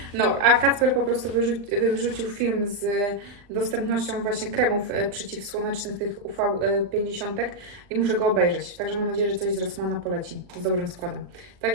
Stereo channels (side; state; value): left; late; 40 ms